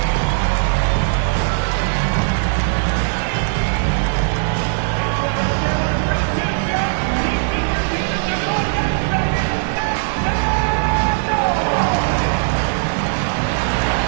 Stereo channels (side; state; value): left; silent; digital silence